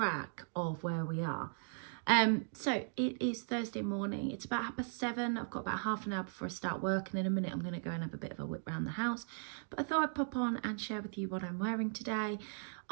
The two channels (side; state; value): left; silent; digital silence